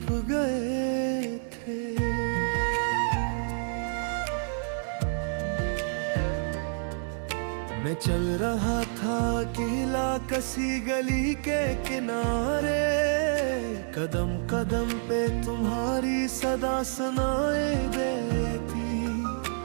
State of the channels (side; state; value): left; silent; 59 dB below the other